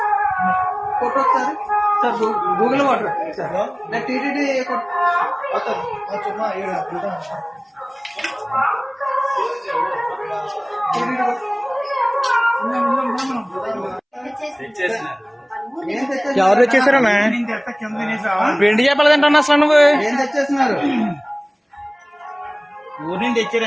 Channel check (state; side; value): identical; both; correlation 1.00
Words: ఫోటో ఒకసారి సార్ గూగుల్ వాటర్ సార్ నేను టీటీడీ ఎవరు తెచ్చేసారన్నా? వెండి చేపలు తింటాను అసలు నువ్వు ఏం తెచ్చేస్తున్నారు? ఊరి నుంచి